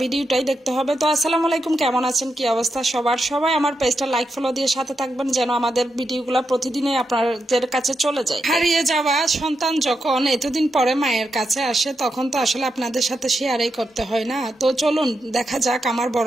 ভিডিওটাই দেখতে হবে। তো আসসালামু আলাইকুম, কেমন আছেন, কি অবস্থা সবার? সবাই আমার পেজটা লাইক ফলো দিয়ে সাথে থাকবেন যেন আমাদের ভিডিওগুলো প্রতিদিনই আপনাদের কাছে চলে যায়। হারিয়ে যাওয়া সন্তান যখন এতদিন পরে মায়ের কাছে আসে তখন তো আসলে আপনাদের সাথে শেয়ারই করতে হয় না। তো চলুন দেখা যাক আমার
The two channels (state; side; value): normal; both; correlation 0.85